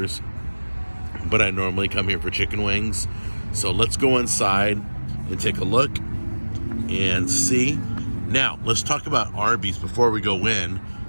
but I normally come here for chicken wings. So let's go inside and take a look and see. Now, let's talk about Arby's before we go in.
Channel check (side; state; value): both; inverted; correlation -1.00